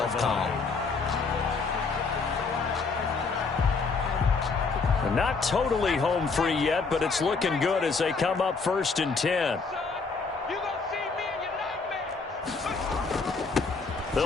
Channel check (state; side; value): quieter; right; 4.5 dB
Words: calm. Not totally home free yet, but it's looking good as they come up 1st and 10.